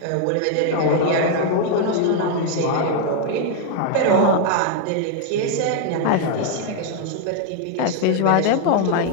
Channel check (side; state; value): both; different; correlation 0.00